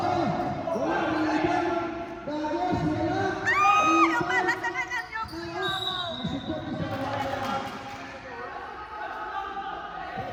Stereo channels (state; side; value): identical; both; correlation 1.00